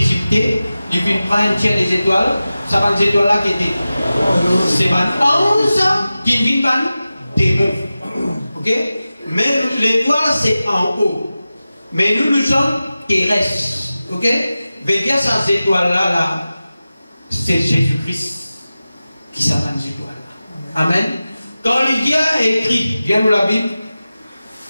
il vient prendre un tiers des étoiles, ça va des étoiles là qui étaient. C'est 11 qui viennent par démons. Ok? Mais l'étoile c'est en haut. Mais nous sommes terrestres. Ok? Veillez à ces étoiles-là, là, c'est Jésus-Christ qui s'appelle les étoiles. Amen. Quand Lydia a écrit, viens nous la Bible,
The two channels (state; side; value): inverted; both; correlation -0.95